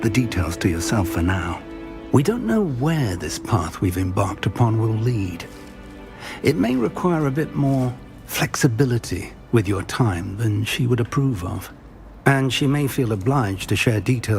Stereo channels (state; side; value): identical; both; correlation 1.00